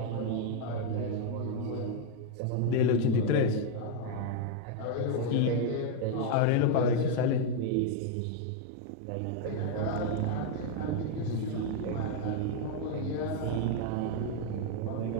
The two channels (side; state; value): both; different; correlation 0.00